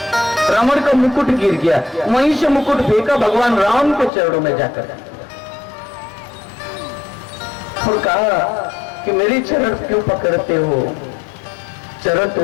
रावण का मुकुट गिर गया, वहीं से मुकुट फेंका भगवान राम के चरणों में जाकर और कहा कि मेरी चरण क्यों पकड़ते हो, चरण तो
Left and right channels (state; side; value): drops out; right; at 4.1 s